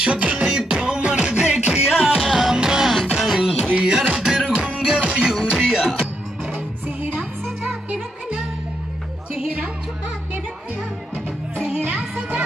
সকলে তোমার দেখিয়া মাতাল হইয়া রাতের ঘুম গেল ইউরিয়া सेहरा सजा के रखना चेहरा छुपा के रखना सेहरा सजा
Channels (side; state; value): both; normal; correlation 0.79